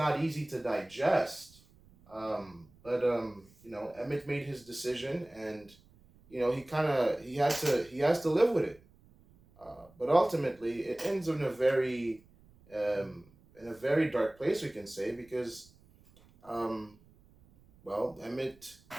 easy to digest. But Emmett made his decision, and he has to live with it. But ultimately, it ends um, in a very dark place, we can say, because Emmett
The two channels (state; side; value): noise; right; rumble, 28 dB below the sound